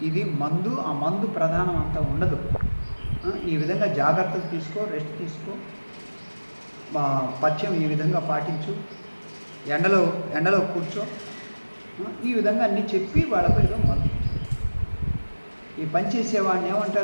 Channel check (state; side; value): inverted; both; correlation -1.00